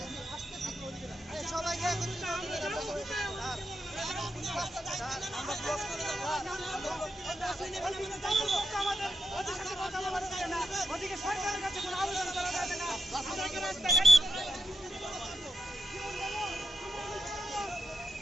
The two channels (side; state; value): both; normal; correlation 0.86